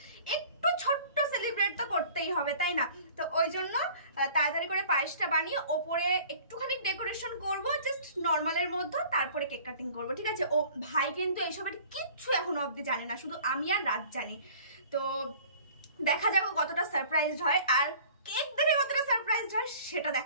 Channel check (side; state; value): both; inverted; correlation -0.48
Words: একটু ছোট্ট সেলিব্রেট তো করতেই হবে, তাই না? তো ওই জন্য তাড়াতাড়ি করে পায়েসটা বানিয়ে ওপরে একটুখানি ডেকোরেশন করব, জাস্ট নর্মালের মধ্যে, তারপরে কেক কাটিং করবো, ঠিক আছে? ও ভাই কিন্তু এইসবের কিচ্ছু এখনো অবধি জানে না, শুধু আমি আর রাত জানি। তো দেখা যাক কতটা সারপ্রাইজড হয়, আর কেক দেখে কতটা সারপ্রাইজড হয় সেটা